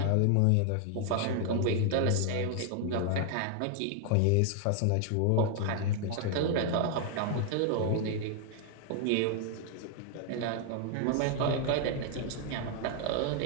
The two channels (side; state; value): both; different; correlation 0.00